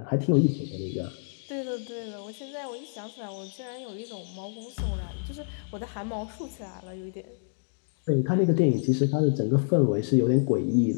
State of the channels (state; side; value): silent; right; digital silence